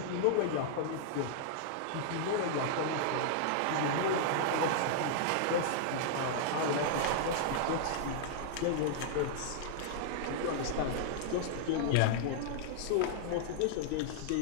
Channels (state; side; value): different; both; correlation -0.01